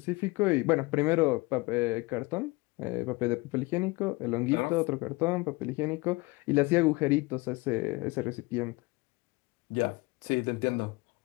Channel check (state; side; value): quieter; right; 24.2 dB